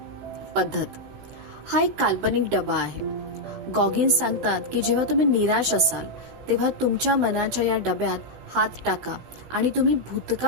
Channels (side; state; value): left; late; 16 ms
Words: पद्धत. हा एक काल्पनिक डबा आहे. गॉगिन्स सांगतात की जेव्हा तुम्ही निराश असाल, तेव्हा तुमच्या मनाच्या या डब्यात हात टाका आणि तुम्ही